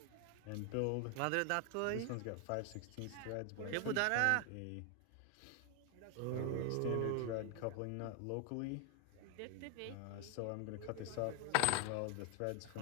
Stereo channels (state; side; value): different; both; correlation 0.00